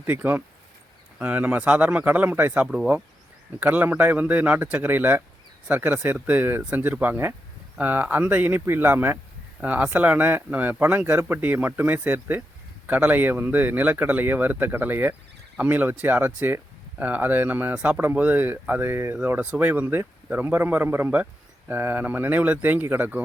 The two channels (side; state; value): both; normal; correlation 0.85